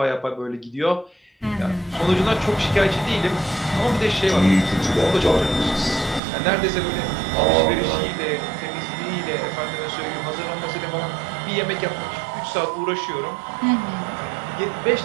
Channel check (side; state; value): left; drops out; at 6.2 s